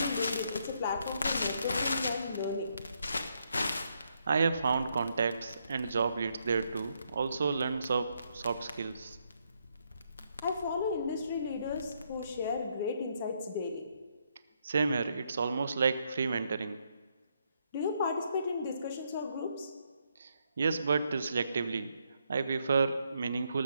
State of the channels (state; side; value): inverted; both; correlation -0.76